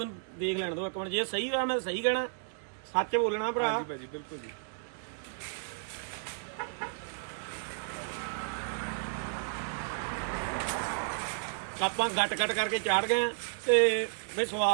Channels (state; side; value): silent; left; 56 dB below the other